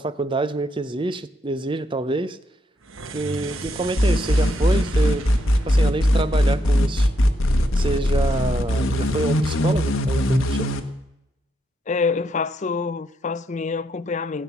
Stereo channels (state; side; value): normal; both; correlation 0.78